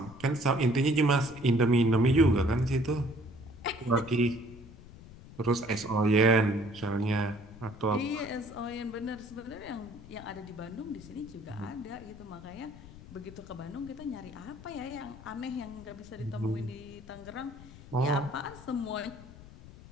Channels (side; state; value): left; noise; rumble, 18 dB below the sound